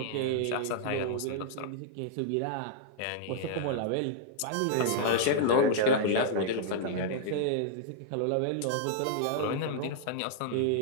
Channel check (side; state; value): both; different; correlation -0.01